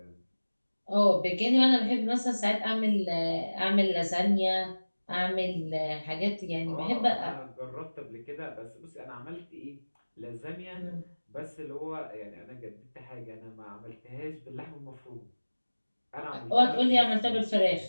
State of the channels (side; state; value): both; inverted; correlation -1.00